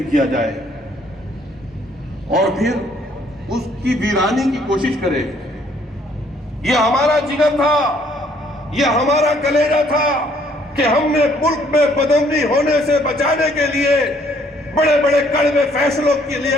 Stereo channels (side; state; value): both; normal; correlation 0.64